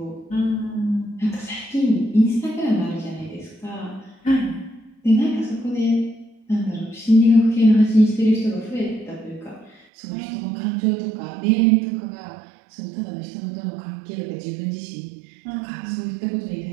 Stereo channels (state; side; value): drops out; left; at 9.8 s